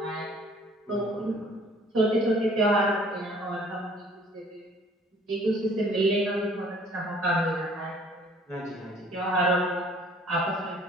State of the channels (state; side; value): normal; both; correlation 0.55